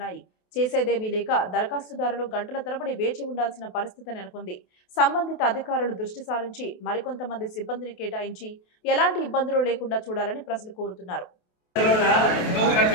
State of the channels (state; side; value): late; right; 28 ms